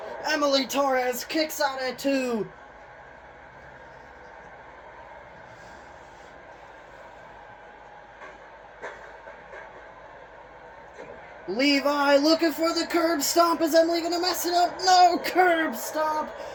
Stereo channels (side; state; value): both; identical; correlation 1.00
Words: Emily Torres kicks out at 2. Levi looking for the curb stomp. Is Emily going to mess it up? No, curb stomp.